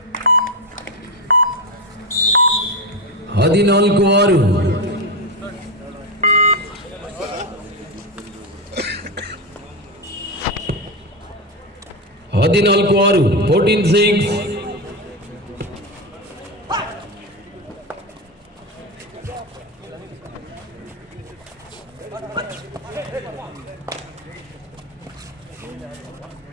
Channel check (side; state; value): both; normal; correlation 0.13